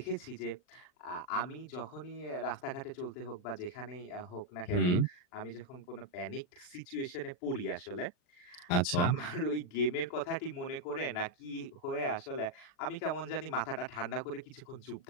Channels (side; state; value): right; late; 39 ms